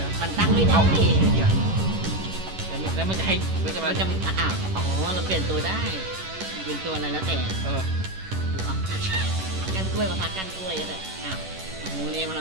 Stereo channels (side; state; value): left; late; 11 ms